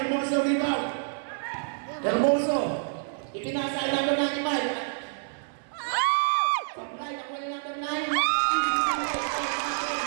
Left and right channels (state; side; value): silent; left; 60 dB below the other